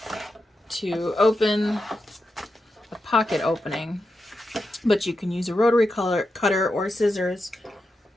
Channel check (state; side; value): normal; both; correlation 0.88